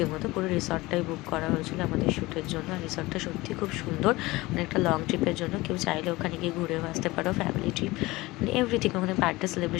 পুরো রিসর্টটাই বুক করা হয়েছিল আমাদের শ্যুটের জন্য, আর রিসর্টটা সত্যি খুব সুন্দর, অনেকটা লং ট্রিপের জন্য কেউ চাইলে ওখানে ওখানে গিয়ে ঘুরেও আসতে পারো, ফ্যামিলি ট্রিপ মানে এভরিথিং, ওখানে বার্থডে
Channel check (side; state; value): right; quieter; 20.6 dB